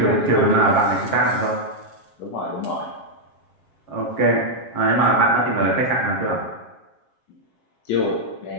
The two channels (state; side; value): late; right; 7.4 ms